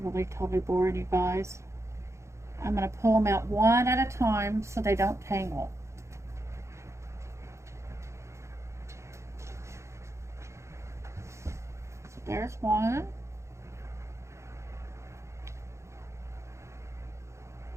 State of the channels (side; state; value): left; late; 0.14 ms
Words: really totally boring you guys. I'm going to pull them out one at a time so they don't tangle. So there's one.